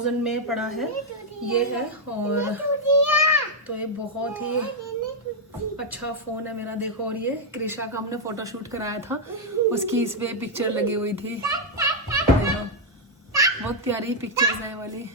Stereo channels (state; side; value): normal; both; correlation -0.01